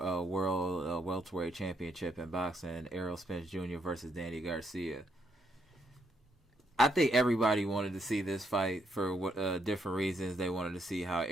World Welterweight Championship in boxing. Errol Spence Jr. versus Danny Garcia. I think everybody wanted to see this fight for different reasons. They wanted to see how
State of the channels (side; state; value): both; normal; correlation 0.76